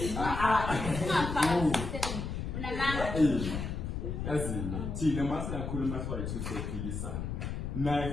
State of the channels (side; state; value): left; noise; rumble, 4 dB below the sound